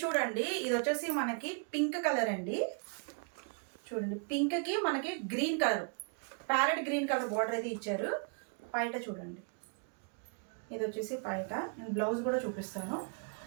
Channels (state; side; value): quieter; left; 39.9 dB